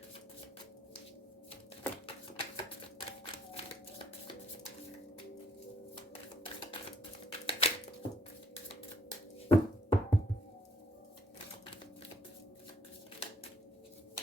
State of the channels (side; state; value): both; normal; correlation 0.66